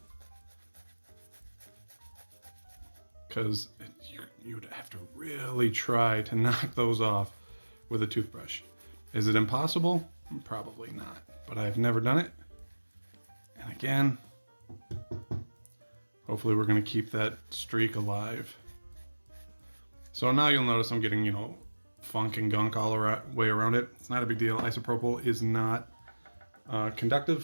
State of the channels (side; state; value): both; inverted; correlation -1.00